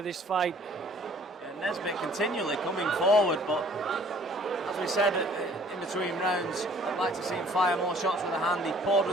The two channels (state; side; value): normal; both; correlation 0.55